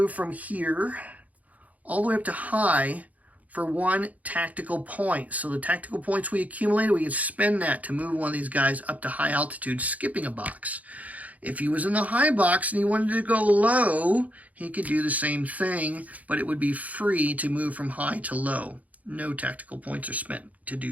from here all the way up to high for 1 tactical point. So the tactical points we accumulated, we can spend that to move one of these guys up to high altitude, skipping a box. If he was in the high box and he wanted to go low, he could do the same thing, but it would be free to move from high to low. No tactical points are spent to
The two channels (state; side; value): late; left; 0.074 ms